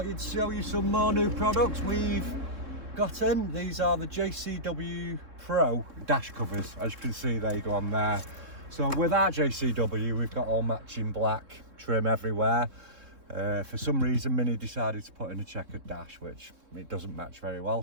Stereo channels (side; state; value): left; late; 3.7 ms